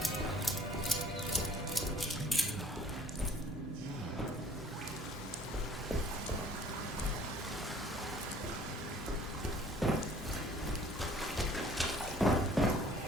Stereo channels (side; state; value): both; normal; correlation 0.53